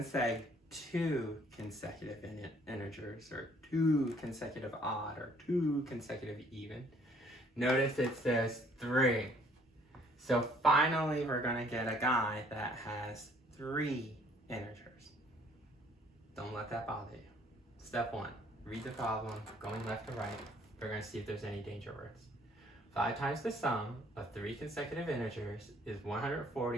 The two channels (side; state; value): both; normal; correlation 0.61